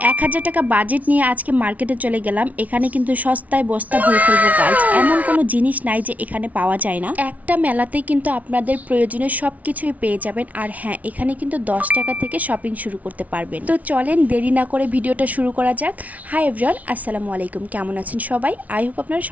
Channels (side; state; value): left; late; 0.071 ms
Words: 1000 টাকা বাজেট নিয়ে আজকে মার্কেটে চলে গেলাম। এখানে কিন্তু সস্তায় বস্তা ভরে ফেলবো গাইজ। এমন কোনো জিনিস নাই যে এখানে পাওয়া যায় না। একটা মেলাতেই কিন্তু আপনাদের প্রয়োজনীয় সব কিছুই পেয়ে যাবেন। আর হ্যাঁ, এখানে কিন্তু 10 টাকা থেকে শপিং শুরু করতে পারবেন। তো চলেন দেরি না করে ভিডিওটা শুরু করা যাক। হাই এভরিওয়ান, আসসালামু আলাইকুম। কেমন আছেন সবাই? আই হোপ আপনারা